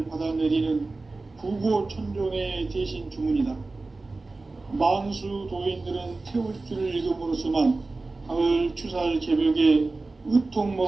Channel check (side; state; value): left; quieter; 3.4 dB